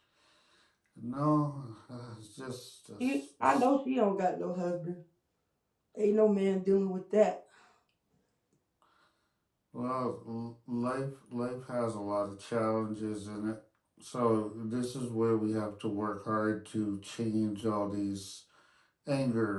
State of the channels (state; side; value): identical; both; correlation 1.00